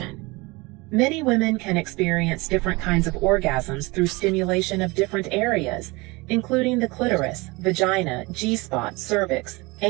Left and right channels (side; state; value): left; quieter; 24.4 dB